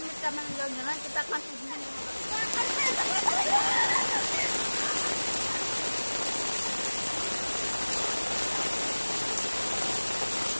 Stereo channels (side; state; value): both; inverted; correlation -1.00